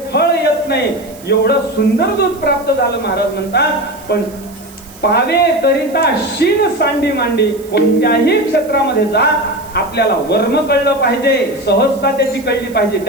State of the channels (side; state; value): right; noise; hiss, 22 dB below the sound